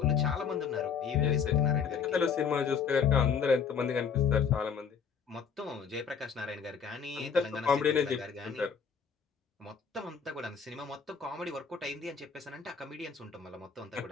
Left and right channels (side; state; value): right; quieter; 6.5 dB